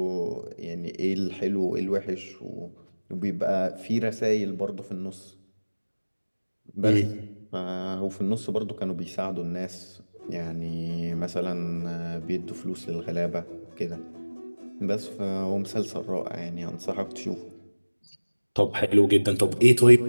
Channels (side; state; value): both; inverted; correlation -1.00